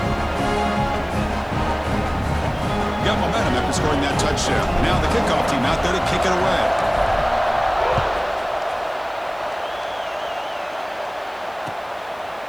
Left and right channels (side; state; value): right; noise; hiss, 29 dB below the sound